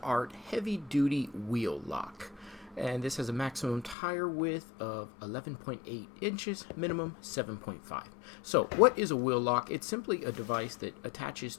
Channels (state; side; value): drops out; right; at 4.0 s